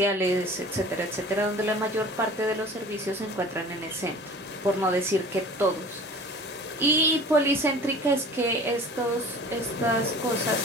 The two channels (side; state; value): both; normal; correlation 0.43